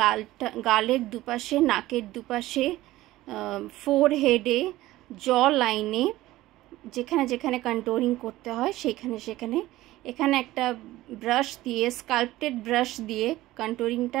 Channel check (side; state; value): left; quieter; 16.7 dB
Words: গালের দুপাশে, নাকের দুপাশে, ফোরহেডে, জ লাইনে, যেখানে যেখানে কন্ট্যুরিং করতে হয় সেখানে এখানে একটা ব্রাশ দিয়ে, স্কাল্পটেড ব্রাশ দিয়ে কন্ট্যুরিংটা